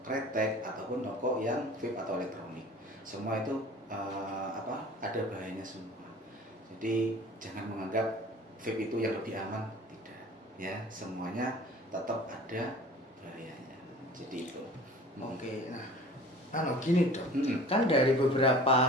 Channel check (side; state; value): both; normal; correlation 0.44